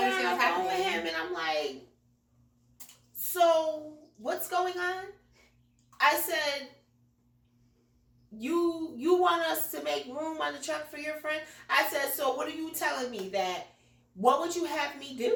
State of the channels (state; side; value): identical; both; correlation 1.00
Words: understand what's happening with him, and I'm like, so what's going on? I said, you want us to make room on the truck for your friend? I said, so what are you telling me that, what would you have me